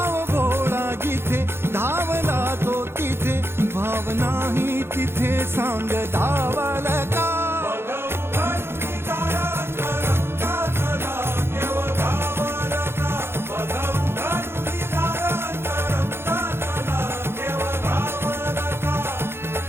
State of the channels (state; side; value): late; left; 0.11 ms